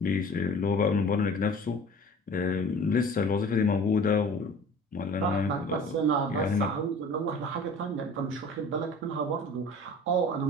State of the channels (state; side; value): normal; both; correlation 0.44